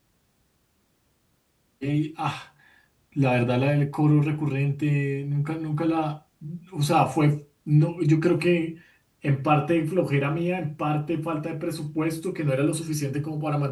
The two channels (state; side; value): identical; both; correlation 1.00